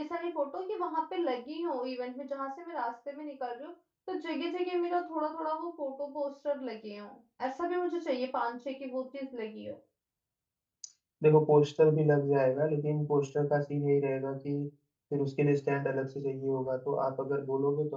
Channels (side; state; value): both; identical; correlation 1.00